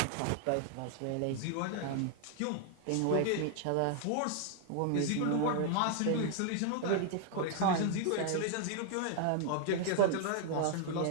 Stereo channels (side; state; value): both; different; correlation 0.00